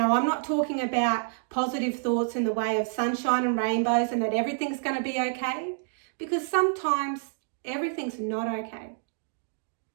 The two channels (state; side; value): silent; left; digital silence